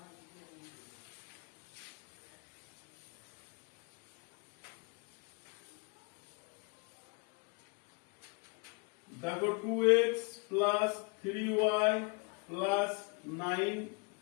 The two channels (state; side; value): quieter; right; 34.4 dB